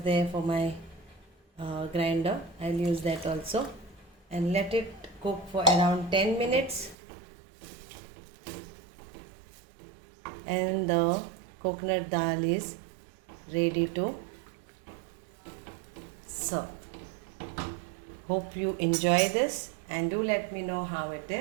for my grinder. I'll use that also and let it cook for around 10 minutes. And the coconut dal is ready to serve. Hope you enjoy this and do let me know how it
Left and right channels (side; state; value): left; drops out; at 7.0 s